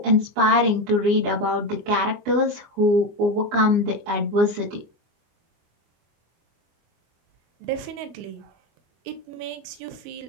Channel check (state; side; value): late; left; 25 ms